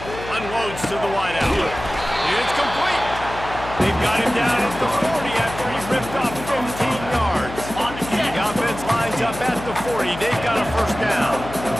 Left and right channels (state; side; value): noise; left; hum, 11 dB below the sound